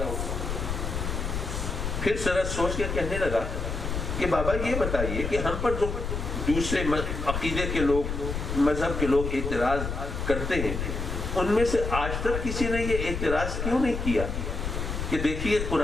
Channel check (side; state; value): left; noise; rumble, 3 dB below the sound